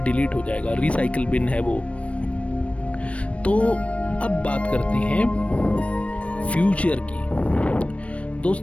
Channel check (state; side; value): late; right; 0.063 ms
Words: डिलीट हो जाएगा। रिसाइकिल बिन है वो। तो अब बात करते हैं फ्यूचर की।